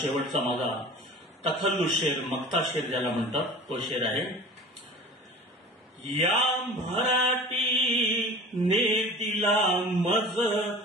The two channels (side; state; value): both; normal; correlation 0.40